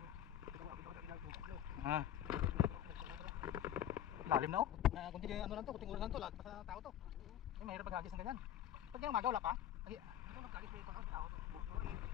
Lalim na, oh. Kunti ano lang to, kunting oras lang to, lahat pa sa tao to. Ay, mahirap maghagis ng ganyan. Pag yung umaga wala pa.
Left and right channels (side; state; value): right; quieter; 11.1 dB